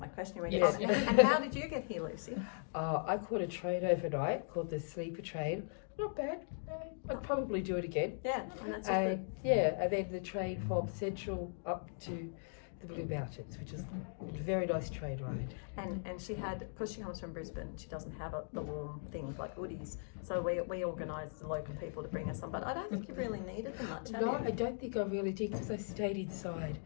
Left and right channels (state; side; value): silent; right; digital silence